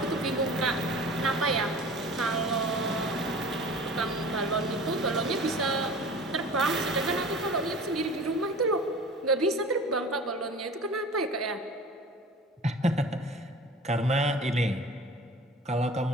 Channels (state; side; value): normal; both; correlation 0.41